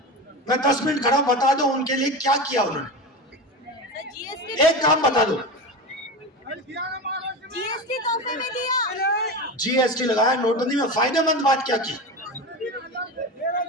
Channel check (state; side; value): normal; both; correlation 0.24